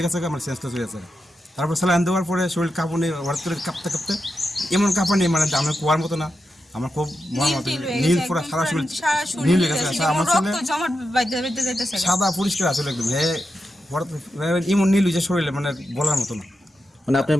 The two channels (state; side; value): normal; both; correlation 0.88